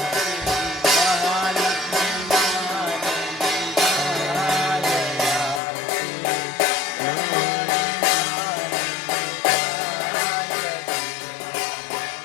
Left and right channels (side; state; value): right; drops out; at 5.6 s